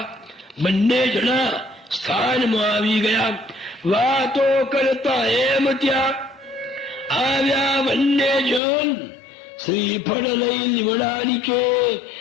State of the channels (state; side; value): drops out; right; at 8.6 s